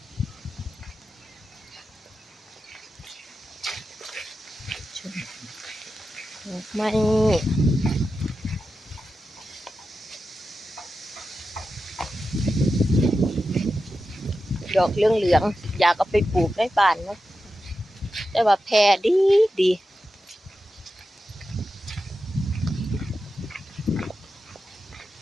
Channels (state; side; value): normal; both; correlation 0.91